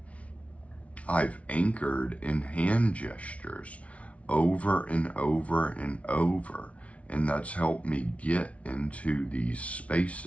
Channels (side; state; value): right; late; 0.064 ms